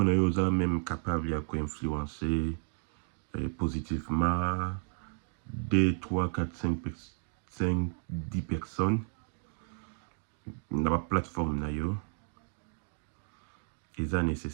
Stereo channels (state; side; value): silent; left; 56 dB below the other